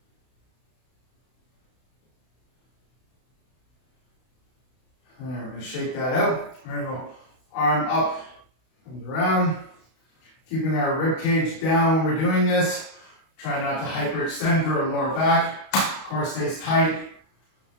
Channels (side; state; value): right; late; 32 ms